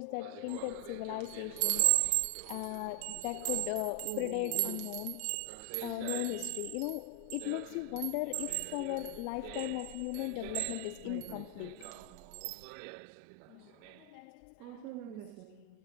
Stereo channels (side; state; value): both; different; correlation 0.00